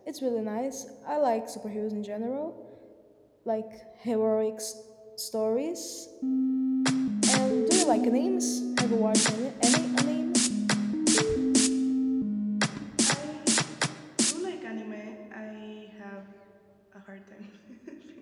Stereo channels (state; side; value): identical; both; correlation 1.00